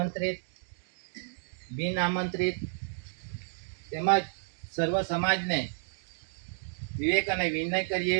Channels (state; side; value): silent; left; digital silence